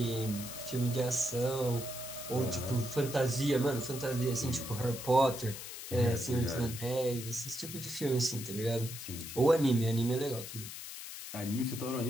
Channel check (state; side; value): noise; left; hiss, 10 dB below the sound